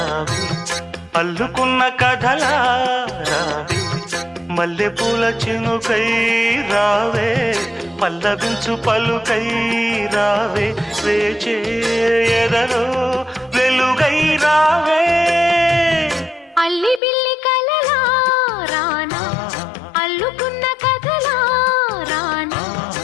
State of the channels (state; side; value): drops out; right; at 17.0 s